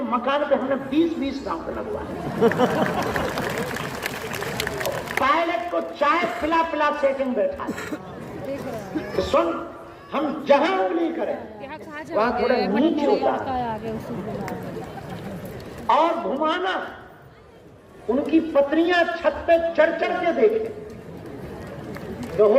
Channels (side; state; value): both; identical; correlation 1.00